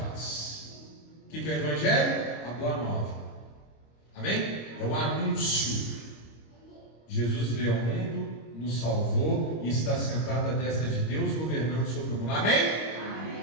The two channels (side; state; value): right; late; 26 ms